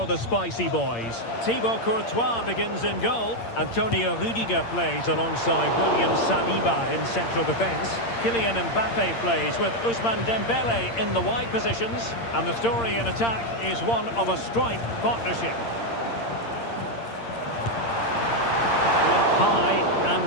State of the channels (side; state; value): right; late; 8.7 ms